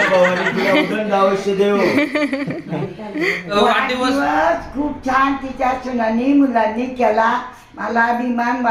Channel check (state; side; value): identical; both; correlation 1.00